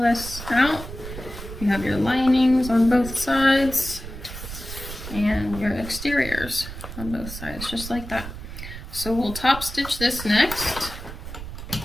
this out. You have your linings on both sides and your exteriors on both sides, just like that. So we'll top stitch this next,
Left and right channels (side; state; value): right; noise; rumble, 10 dB below the sound